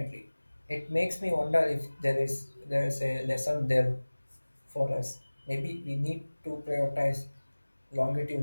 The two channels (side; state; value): both; inverted; correlation -1.00